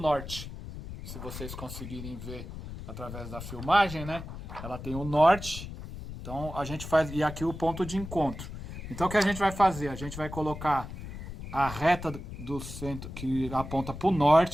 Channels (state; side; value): noise; left; rumble, 10 dB below the sound